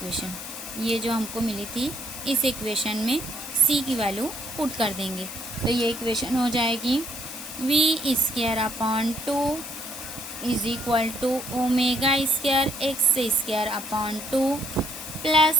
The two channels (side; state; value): left; noise; hiss, 10 dB below the sound